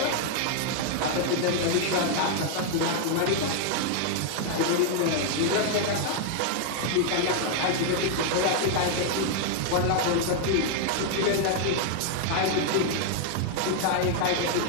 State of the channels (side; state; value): both; different; correlation 0.00